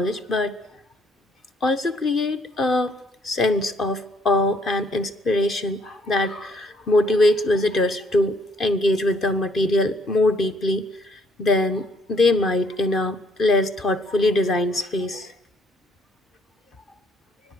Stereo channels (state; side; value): normal; both; correlation 0.64